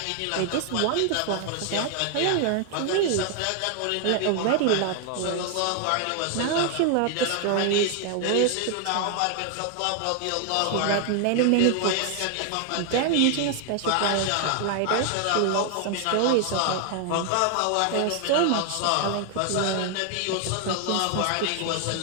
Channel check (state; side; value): different; both; correlation 0.00